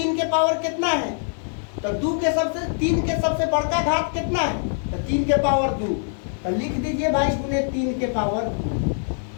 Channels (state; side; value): silent; right; digital silence